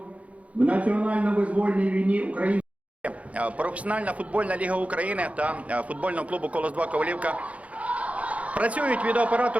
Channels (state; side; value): late; left; 0.066 ms